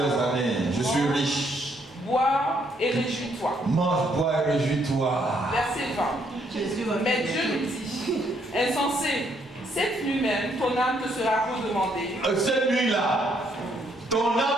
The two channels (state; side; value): normal; both; correlation 0.71